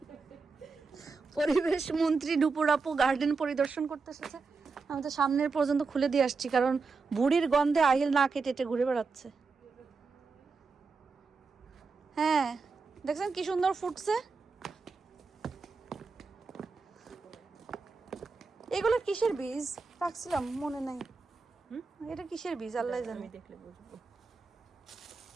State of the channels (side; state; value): left; quieter; 4.5 dB